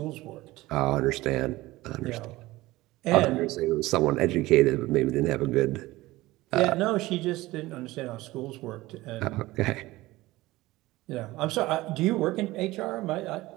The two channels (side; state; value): left; quieter; 18.6 dB